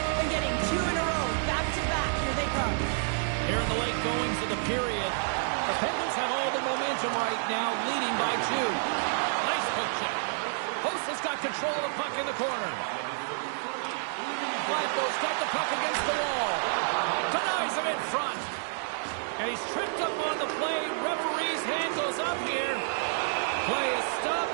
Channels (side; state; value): left; silent; digital silence